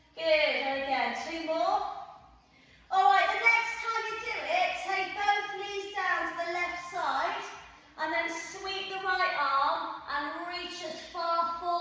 Good, and again, 2 more. All right, the next time you do it, take both knees down to the left side, and then sweep the right arm and reach as far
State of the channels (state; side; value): identical; both; correlation 1.00